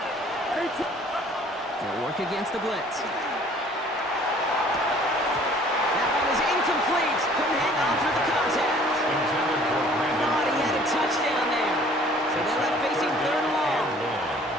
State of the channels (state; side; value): normal; both; correlation 0.54